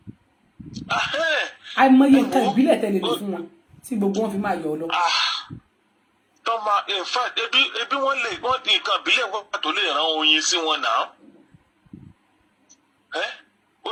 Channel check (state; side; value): identical; both; correlation 1.00